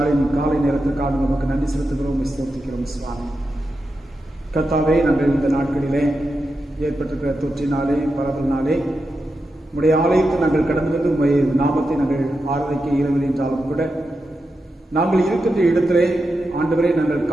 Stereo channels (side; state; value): both; normal; correlation 0.88